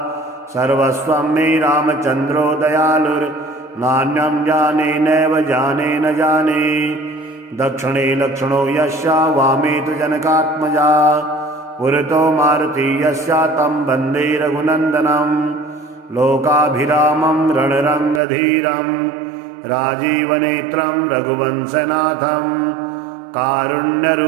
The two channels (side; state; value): left; drops out; at 18.2 s